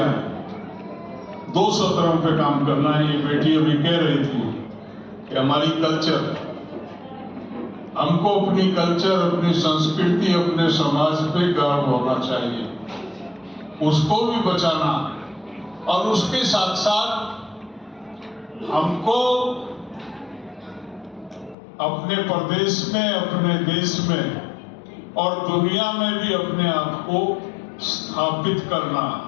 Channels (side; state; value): right; drops out; at 21.6 s